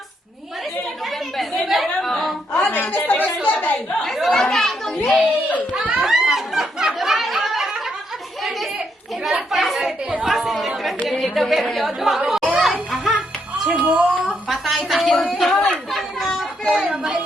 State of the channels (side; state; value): both; normal; correlation 0.77